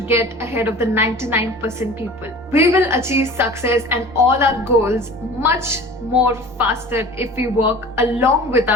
get ahead of the 99% people. We will achieve success and all our goals much more faster if we work along with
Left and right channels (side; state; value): both; normal; correlation 0.40